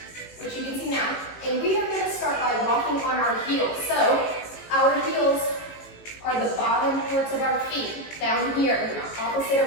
which you can see now. And we are gonna start by walking on our heels. So our heels are the bottom parts of our feet, down here, opposite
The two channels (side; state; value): right; late; 18 ms